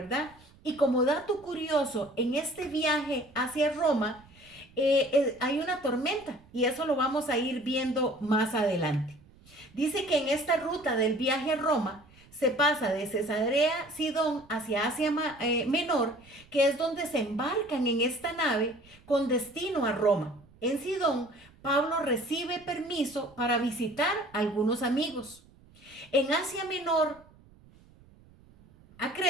Y como dato curioso, en este viaje hacia Roma hay una tormenta y eso lo vamos a ir viendo más adelante. Dice que en esta ruta del viaje a Roma se pasa de Cesarea Sidón hacia Asia Menor, que es donde se embarcan en esta nave con destino a Roma. En Sidón, Pablo recibe permiso para visitar a algunos amigos. En Asia Menor, a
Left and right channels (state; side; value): noise; right; rumble, 26 dB below the sound